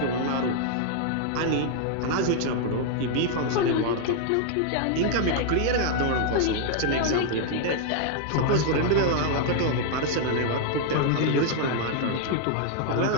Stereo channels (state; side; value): different; both; correlation 0.00